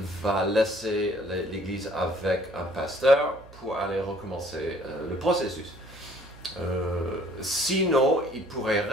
laisser l'église avec un pasteur pour aller recommencer le processus. Sinon, il pourrait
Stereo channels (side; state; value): right; noise; hum, 21 dB below the sound